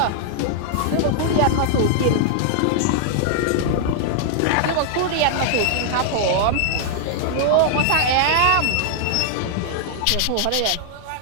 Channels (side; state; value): both; different; correlation -0.01